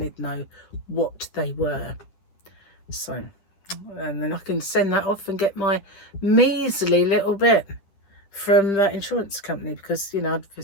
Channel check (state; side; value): late; right; 10 ms